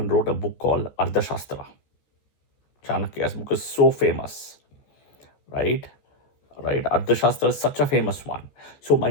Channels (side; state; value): right; late; 14 ms